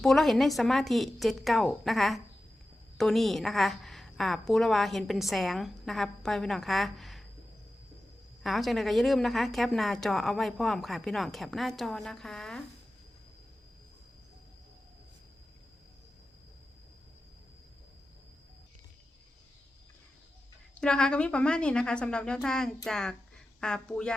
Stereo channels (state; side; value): normal; both; correlation 0.94